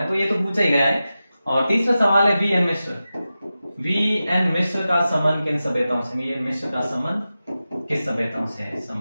तो ये तो पूछा ही गया है। और तीसरा सवाल है, वी एन मिश्र का संबंध किन सभ्यताओं से? वी एन मिश्र का संबंध किस सभ्यताओं से है?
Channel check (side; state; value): both; inverted; correlation -0.93